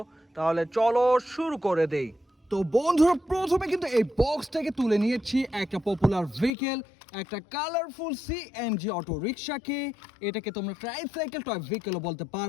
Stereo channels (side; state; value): right; drops out; at 6.5 s